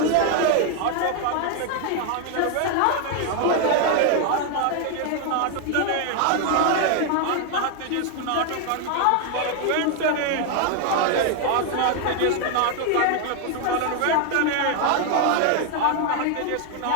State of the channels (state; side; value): different; both; correlation 0.01